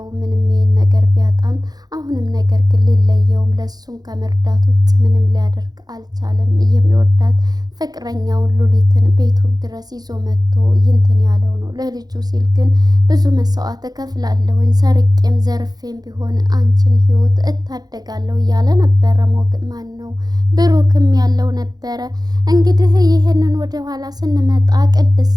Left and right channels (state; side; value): late; left; 0.19 ms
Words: ምንም ይሄን ነገር ቢያጣም አሁንም ነገር ግን ሊለየውም ለሱም ከመርዳት ውጭ ምንም ሊያደርግ አልቻለም። የሚወዳት ፍቅረኛውን ሉሊትን ቤቱ ድረስ ይዞ መጥቶ ይንትን ያለው ነው። ለልጁ ሲል ግን ብዙ መስዋዕት እከፍላለሁኝ፣ ሰርቄም ዘርፌም ቢሆን አንቺን ህይወት እታደጋለሁ እያለ ነበረ። ማን ነው ብሩክም ያለው ነበረ። እንግዲህ ይህንን ወደ ኋላ ስንመጣ